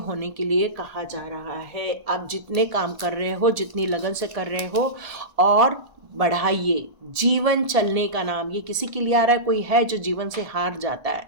होने के लिए कहा जा रहा है। आप जितने काम कर रहे हो, जितनी लगन से कर रहे हो, और बढ़ाइए। जीवन चलने का नाम, ये किसी के लिए आ रहा है, कोई है जो जीवन से हार जाता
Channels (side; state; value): left; late; 1.7 ms